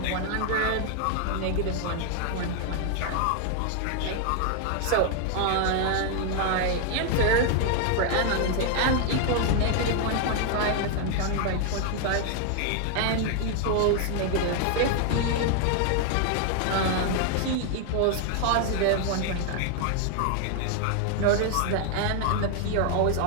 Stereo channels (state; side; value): different; both; correlation 0.00